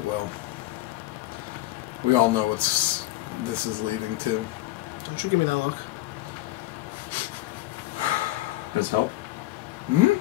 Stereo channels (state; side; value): quieter; right; 17.0 dB